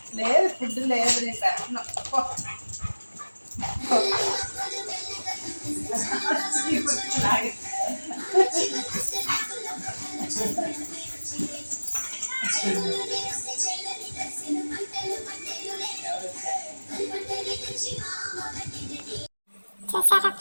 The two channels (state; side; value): inverted; both; correlation -1.00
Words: లేదు ఫుడ్ లేదు, నేను పెట్టను. చూసారా